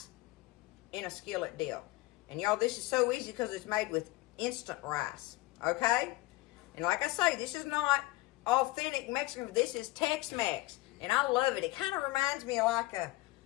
in a skillet deal. And y'all, this is so easy because it's made with instant rice, okay? And like I say, this is not authentic Mexican. This is Tex-Mex, and I love it. It kind of reminds me of like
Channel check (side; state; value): right; quieter; 19.7 dB